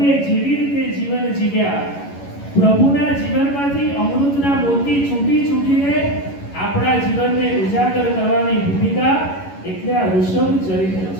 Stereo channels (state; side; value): late; right; 11 ms